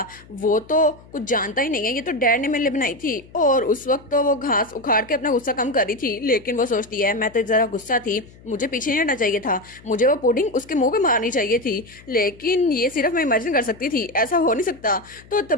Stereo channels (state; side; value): noise; left; hum, 23 dB below the sound